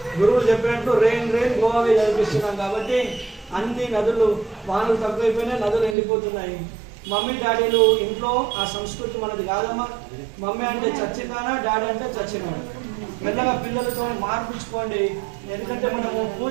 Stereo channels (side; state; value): left; drops out; at 6.0 s